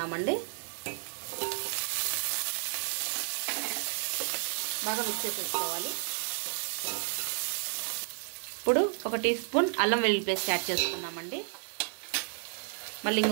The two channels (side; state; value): left; silent; digital silence